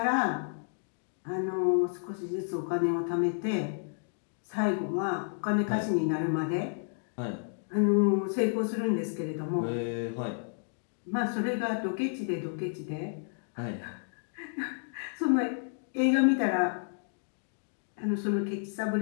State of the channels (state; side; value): silent; right; digital silence